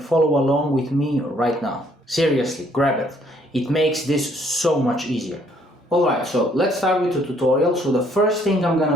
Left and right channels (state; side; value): normal; both; correlation 0.65